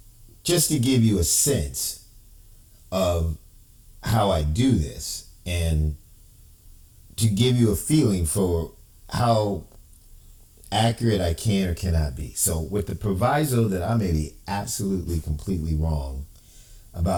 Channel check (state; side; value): identical; both; correlation 1.00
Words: just to give you a sense of how I do this and to give you a feeling for how accurate I can or cannot be. So with the proviso that I may be absolutely completely wrong